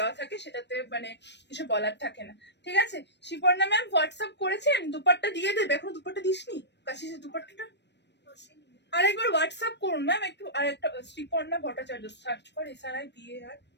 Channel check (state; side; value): late; right; 0.50 ms